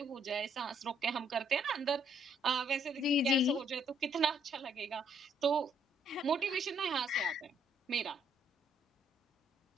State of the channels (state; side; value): normal; both; correlation 0.69